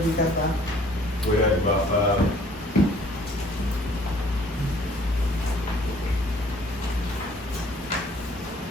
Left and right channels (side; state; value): both; normal; correlation 0.57